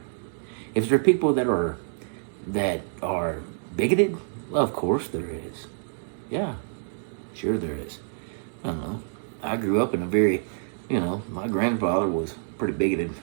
If there are people that are bigoted, well, of course there is. Yeah, sure there is. I don't know. I grew up in a very, you know, my grandfather was pretty bigoted.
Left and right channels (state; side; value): silent; left; digital silence